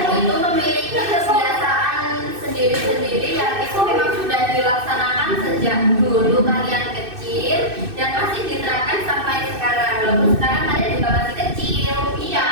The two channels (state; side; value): late; left; 2.6 ms